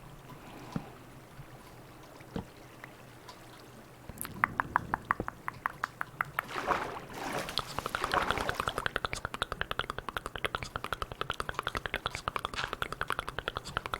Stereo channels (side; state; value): both; identical; correlation 1.00